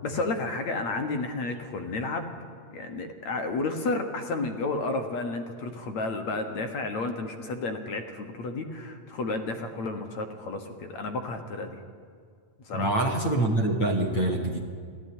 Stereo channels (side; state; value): right; late; 8.8 ms